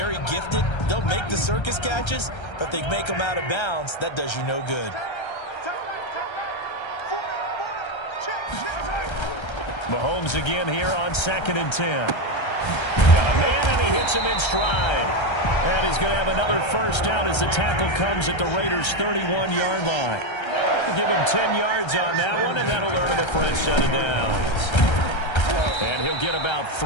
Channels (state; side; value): late; right; 1.3 ms